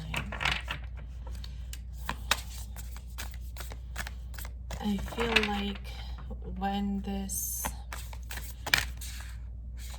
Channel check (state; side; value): identical; both; correlation 1.00